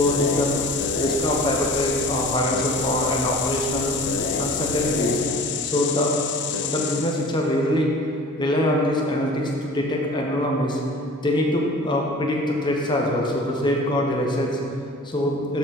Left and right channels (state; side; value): normal; both; correlation 0.43